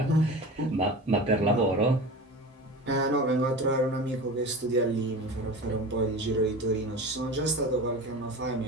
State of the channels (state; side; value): normal; both; correlation 0.32